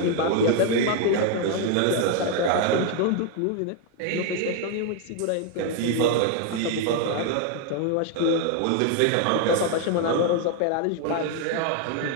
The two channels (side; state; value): both; different; correlation 0.01